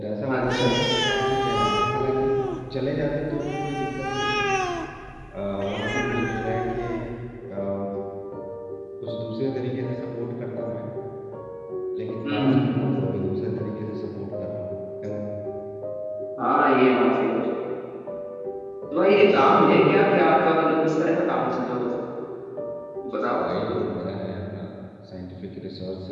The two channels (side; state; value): both; identical; correlation 1.00